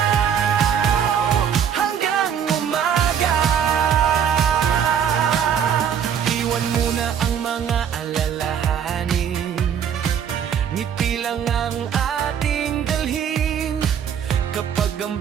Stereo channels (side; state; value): left; quieter; 8.3 dB